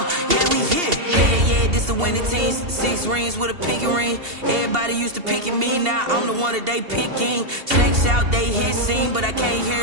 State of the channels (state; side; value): late; left; 2.8 ms